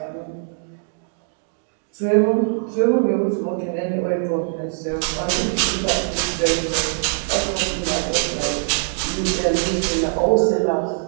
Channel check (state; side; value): silent; left; 64 dB below the other